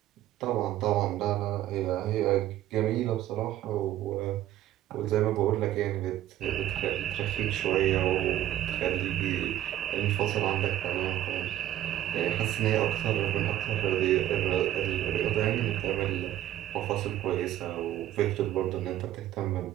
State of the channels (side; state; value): left; quieter; 12.9 dB